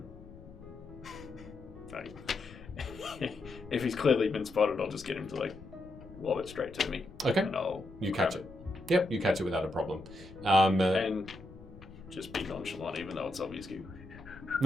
Like, if he's clearly been spotted, I'll just get him to lob it straight to me. Okay. And I'll You grab catch it. Yep, you catch it without a problem. And just be nonchalant, even though it's obvious.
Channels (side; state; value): left; noise; rumble, 17 dB below the sound